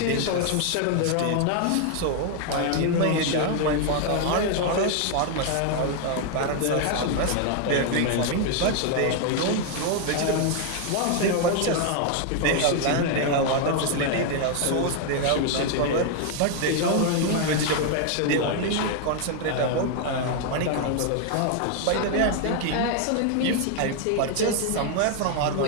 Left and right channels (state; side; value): different; both; correlation 0.00